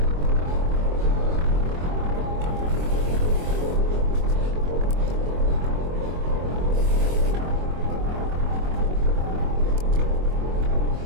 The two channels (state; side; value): late; left; 23 ms